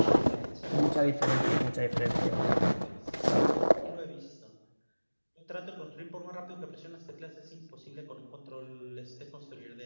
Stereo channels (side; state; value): both; inverted; correlation -1.00